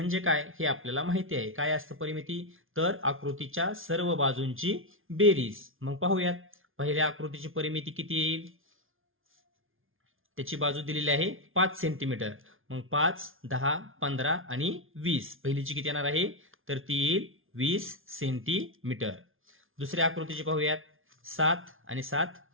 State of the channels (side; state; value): left; late; 0.59 ms